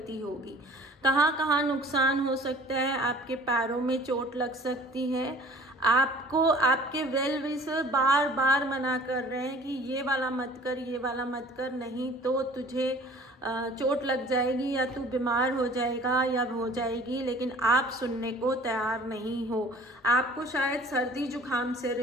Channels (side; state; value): both; normal; correlation 0.49